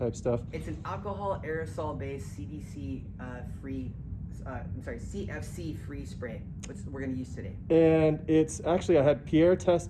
stuff. It's an alcohol aerosol based CDC free. CFC free spray, which we're going to use today. And it's actually, I had Pierre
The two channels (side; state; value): both; identical; correlation 1.00